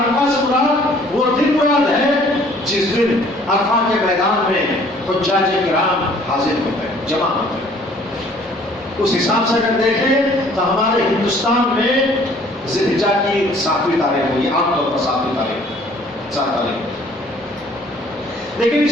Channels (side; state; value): both; normal; correlation 0.57